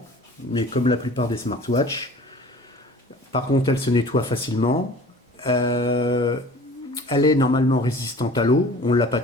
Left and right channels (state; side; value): normal; both; correlation 0.45